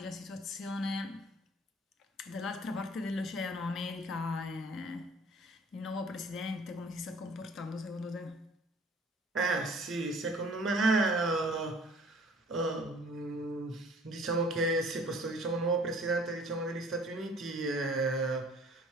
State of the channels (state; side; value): normal; both; correlation 0.52